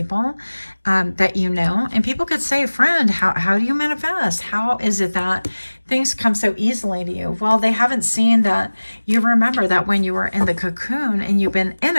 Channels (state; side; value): inverted; both; correlation -1.00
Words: that you know. And people could say, friend, how do you manifest? How is it that things come so easily to you? Well, they haven't seen that you remember that when you were in the cocoon, and you've been in